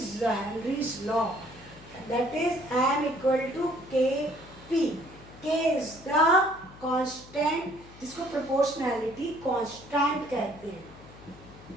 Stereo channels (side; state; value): left; noise; hum, 20 dB below the sound